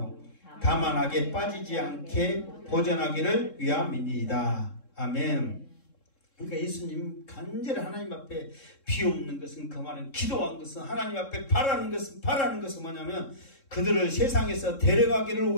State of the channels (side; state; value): right; late; 3.7 ms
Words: 다만 악에 빠지지 않게 보전하기를 위함이니이다. 아멘. 그러니까 예수님 간절히 하나님 앞에 비옵는 것은, 그 말은 기도한 것은, 하나님 앞에 바라는 것은 뭐냐면 그들을 세상에서 데려가기를